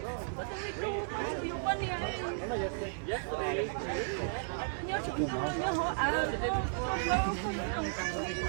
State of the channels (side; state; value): left; silent; digital silence